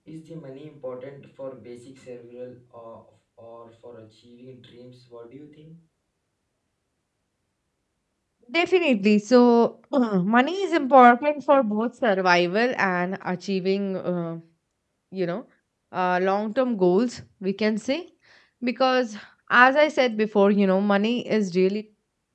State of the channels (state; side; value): identical; both; correlation 1.00